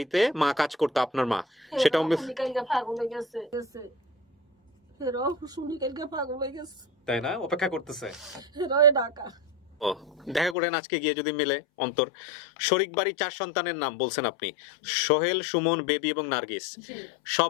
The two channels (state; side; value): drops out; right; at 10.6 s